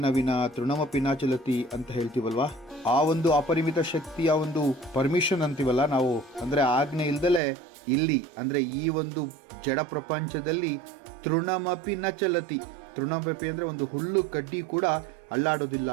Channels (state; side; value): drops out; left; at 7.4 s